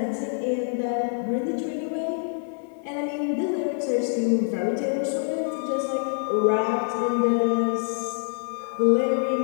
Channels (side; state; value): right; silent; digital silence